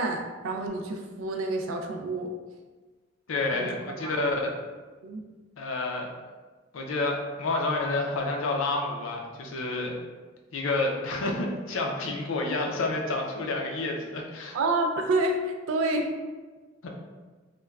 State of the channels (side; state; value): both; normal; correlation 0.13